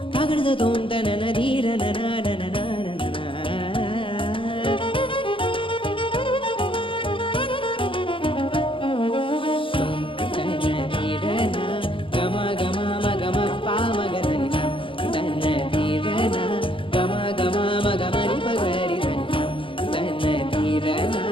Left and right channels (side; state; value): right; late; 0.25 ms